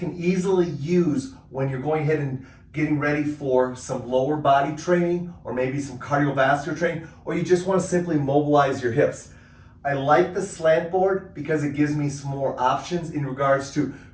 easily use when you're going ahead and getting ready for some lower body training or maybe some cardiovascular training, or you just want to simply mobilize your hips. I like the slant board because it gives me some more options in regards to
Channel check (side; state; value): both; identical; correlation 1.00